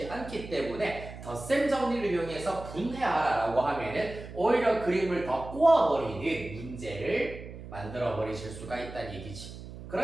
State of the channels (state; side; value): noise; right; hum, 13 dB below the sound